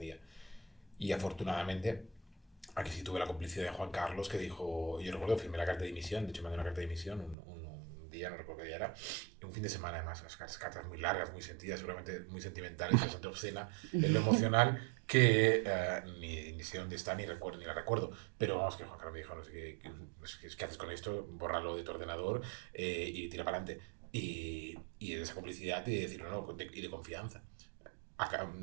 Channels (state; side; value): drops out; left; at 7.4 s